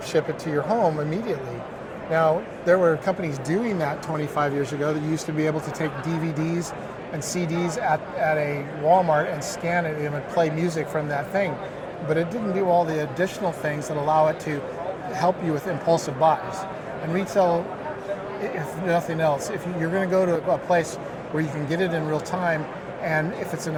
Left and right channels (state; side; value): identical; both; correlation 1.00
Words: ship it to your home immediately. Now, there were companies doing that 25 years ago that used to be able to take DVDs and CDs at a Walmart and scan it and it would play music from that thing. But it didn't do all the additional things that allow it to help you with impulsive buys. And retail, if nothing else, if you're going to go to a place where you can get it in real time, and if